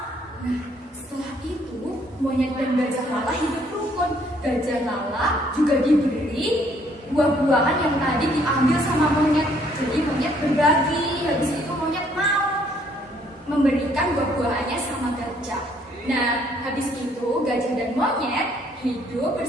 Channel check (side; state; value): both; normal; correlation 0.65